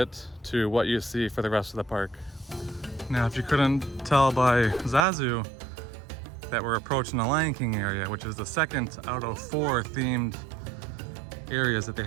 to what you see for the rest of the park. Now, if you couldn't tell by Zazu, that we're approaching the Lion King area, which is the 2nd out of 4 themed areas that they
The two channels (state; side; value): drops out; left; at 5.1 s